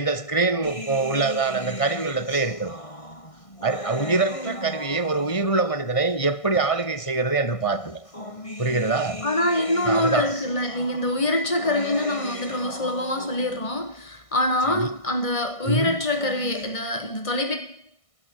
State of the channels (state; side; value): late; right; 1.6 ms